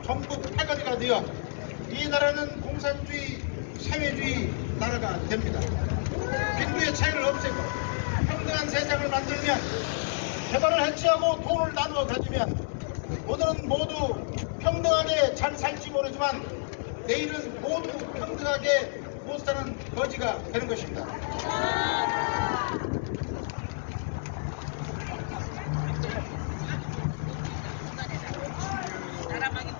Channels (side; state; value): right; silent; digital silence